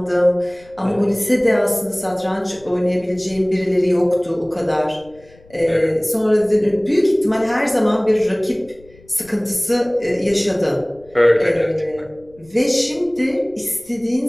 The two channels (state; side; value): noise; left; rumble, 27 dB below the sound